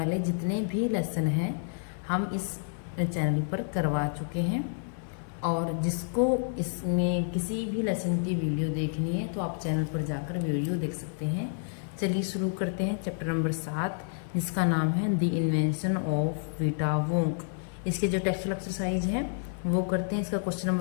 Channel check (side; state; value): right; silent; digital silence